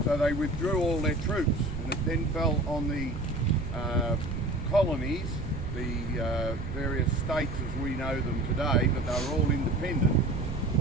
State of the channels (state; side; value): noise; right; rumble, 6 dB below the sound